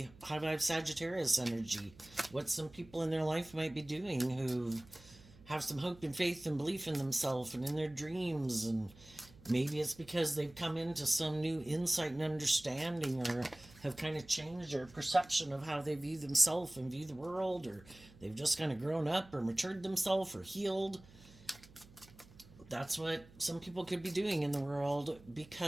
high vibe Sagittarius energy. What some people in their life might be doing who have some hope and faith and belief in themselves and in their dreams. And maybe it's because they've come into some new insight and understanding, or have kind of changed their perception of how they view themselves and view the world, or they've just kind of grown up or matured themselves or healed. That's what some people could be doing in the world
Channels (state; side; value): noise; right; hum, 23 dB below the sound